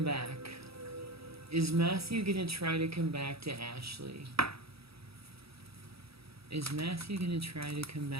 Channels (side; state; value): left; late; 0.77 ms